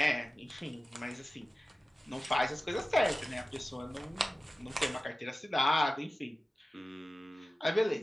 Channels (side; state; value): both; normal; correlation 0.96